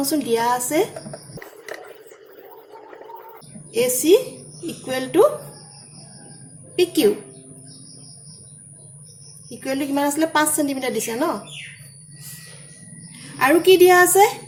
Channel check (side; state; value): both; identical; correlation 1.00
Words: দিয়া আছে AC equal to PQ equal to কিমান আসলে 5 cm দিছে ন আৰু কি দিয়া আছে